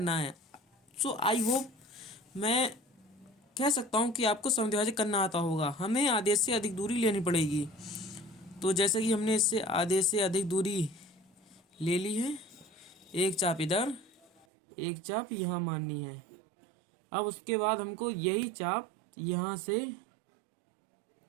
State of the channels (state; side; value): drops out; left; at 14.5 s